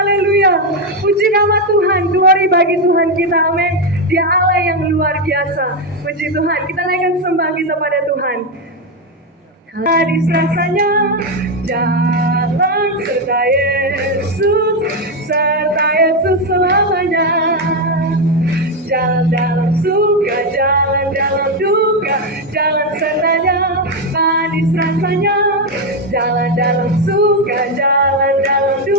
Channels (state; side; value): normal; both; correlation 0.06